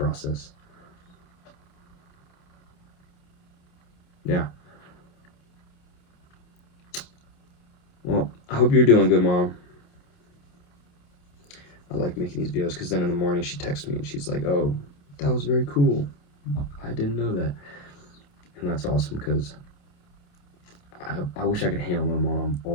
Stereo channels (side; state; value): right; late; 28 ms